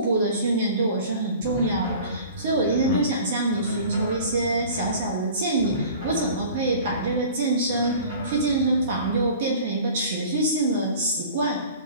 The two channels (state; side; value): inverted; both; correlation -0.43